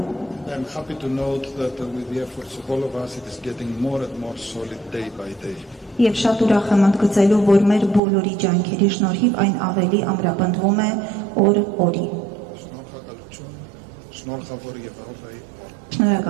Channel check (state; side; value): drops out; left; at 8.0 s